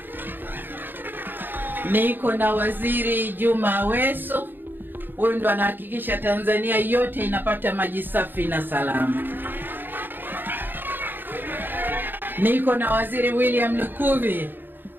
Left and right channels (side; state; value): left; late; 0.094 ms